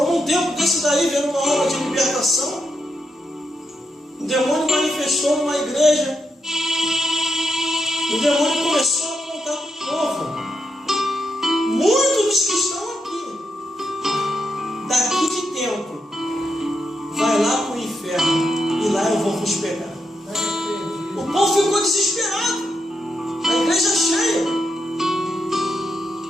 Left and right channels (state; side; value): normal; both; correlation 0.83